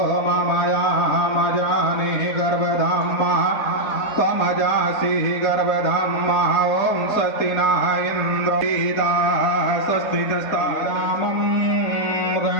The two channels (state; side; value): late; right; 4.1 ms